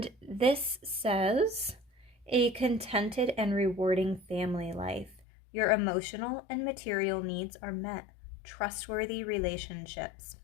this says, a contented and rewarding family life. Your emotional and material needs are met. Trustworthy relationships.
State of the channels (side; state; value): right; drops out; at 5.2 s